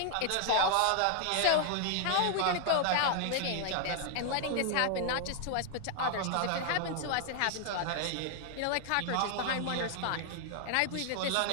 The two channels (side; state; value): both; different; correlation 0.00